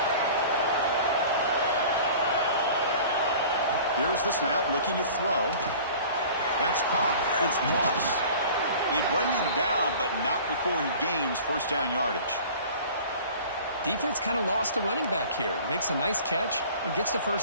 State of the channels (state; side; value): inverted; both; correlation -0.44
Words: Here's the snap, looking to throw. That's caught. It's Moss. They bring him down, but not before he gains 1st down yardage. Defense kind of lost the running back here. Makes a nice catch and gets the